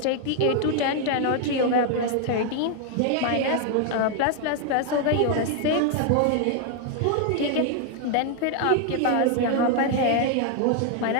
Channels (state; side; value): different; both; correlation 0.00